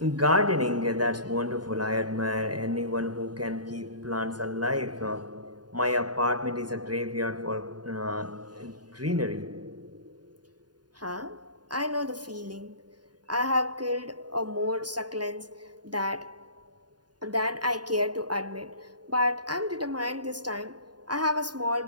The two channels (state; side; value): late; left; 0.70 ms